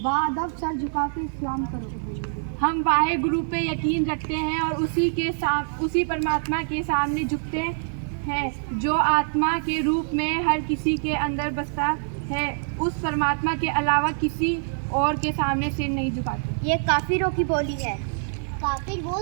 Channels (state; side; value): silent; left; digital silence